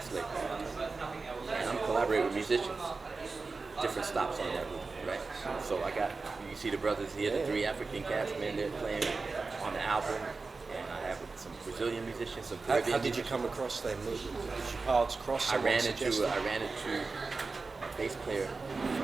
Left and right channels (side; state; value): left; quieter; 4.1 dB